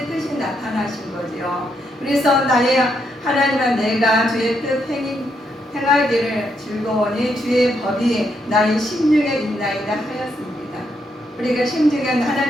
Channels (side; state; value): both; normal; correlation 0.78